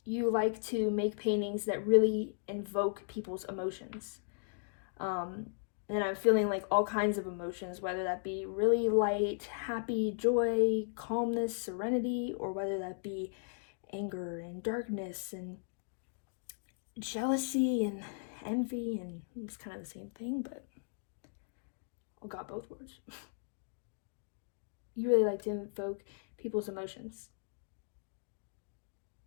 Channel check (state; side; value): silent; right; digital silence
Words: you like to make paintings that really invoke people's emotions. And I'm feeling like all kinds of emotions, whether that be really light, happy, joy, calmness, serenity, or whether that be anger and darkness and jealousy and envy, and it's kind of the same thing, but I got both words. You really like to invoke people's emotions.